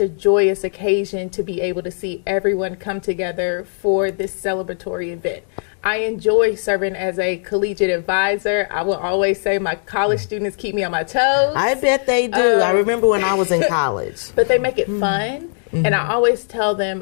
joyous occasion to be able to see everyone come together for this celebratory event. I enjoy serving as a collegiate advisor. I will always say my college students keep me on my toes. I bet they do. I remember when I was in college. But they make it fun. And I always tell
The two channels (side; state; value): right; silent; digital silence